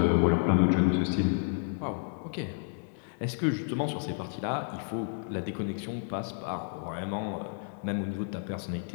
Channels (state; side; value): silent; right; digital silence